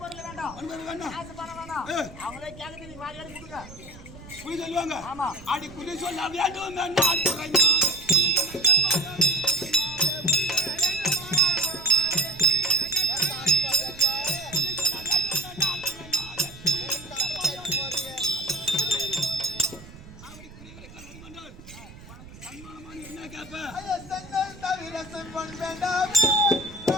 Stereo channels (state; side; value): noise; right; rumble, 18 dB below the sound